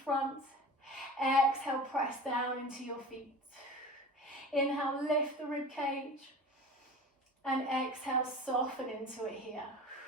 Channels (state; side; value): normal; both; correlation 0.36